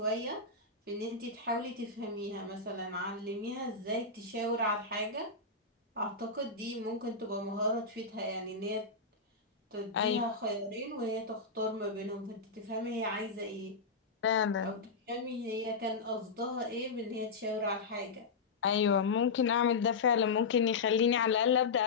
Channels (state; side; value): quieter; right; 4.3 dB